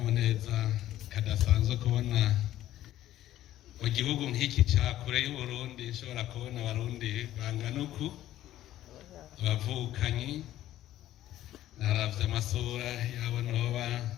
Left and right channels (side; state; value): right; quieter; 13.5 dB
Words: kadasanzwe kubona mu gihugu nk'iki cya kure y'Uburundi nshobora kubona abarundi bangana uku, abavukanyi. Naravye amasura yabo noba